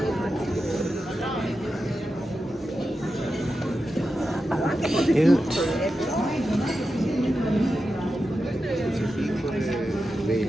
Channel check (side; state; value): both; normal; correlation 0.90